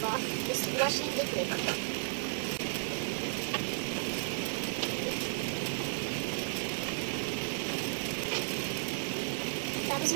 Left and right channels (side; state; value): left; silent; digital silence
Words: dishwashing liquid. Tapos